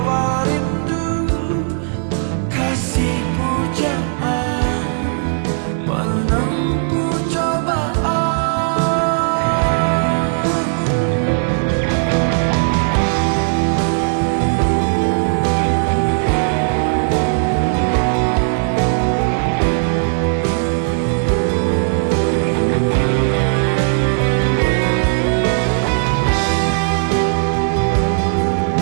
rindu, kasih pujaan menempuh cobaan.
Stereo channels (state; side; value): silent; left; 65 dB below the other